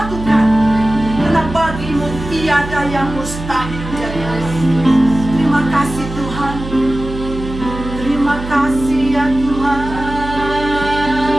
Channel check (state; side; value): noise; right; hum, 10 dB below the sound